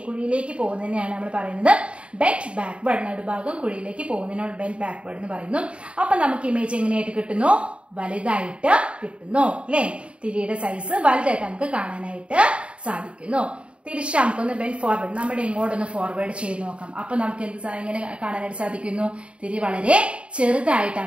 കുഴിയിലേക്ക് പോകുന്നതിനെയാണ് നമ്മൾ പറയുന്നത് ബെൻഡ് ബാക്ക്വേർഡ്. നടുഭാഗം കുഴിയിലേക്ക് പോകുന്നതിനാണ് ബെൻഡ് ബാക്ക്വേർഡ് എന്ന് പറയുന്നു. അപ്പൊ നമുക്ക് ഇമേജ് എങ്ങനെയായിട്ട് കിട്ടുന്നു? വലുതായിട്ട് കിട്ടുന്നു അല്ലെ. തിരിയുടെ സൈസ് വലുതായിട്ട് നമുക്ക് കാണാനായിട്ട് സാധിക്കുന്നു. തിരിച്ച് നമുക്കൊന്ന് ബെൻഡ് ഫോർവേഡ്, നമ്മുടെ ഇങ്ങോട്ടൊന്ന് ഫോർവേഡ് ചെയ്ത് നോക്കാം. അപ്പൊ നമുക്ക് എങ്ങനെ കാണാനായിട്ട് സാധിക്കുന്നു? തിരി വളരെ ചെറുതായിട്ട്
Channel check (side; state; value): left; late; 0.058 ms